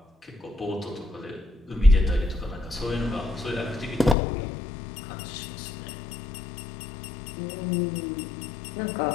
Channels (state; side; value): drops out; right; at 4.2 s